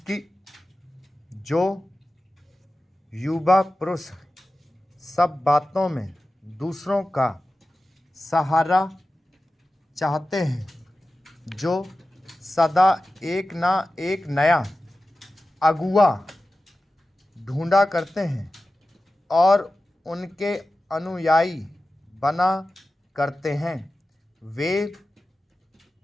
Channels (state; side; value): normal; both; correlation 0.95